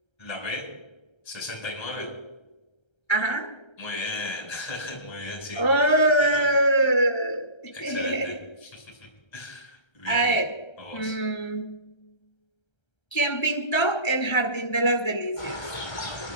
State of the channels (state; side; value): late; right; 1.3 ms